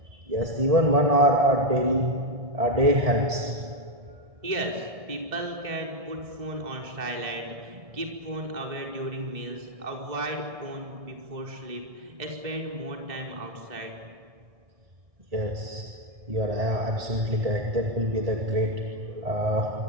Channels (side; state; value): left; late; 1.6 ms